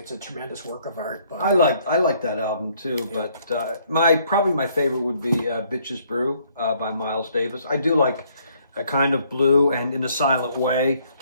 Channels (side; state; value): both; inverted; correlation -0.66